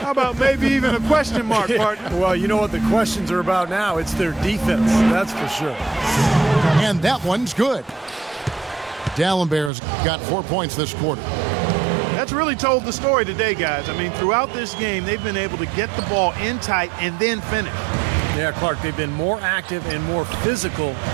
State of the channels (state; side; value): drops out; left; at 9.7 s